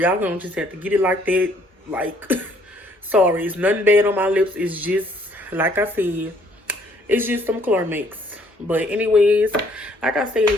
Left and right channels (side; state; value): both; normal; correlation 0.63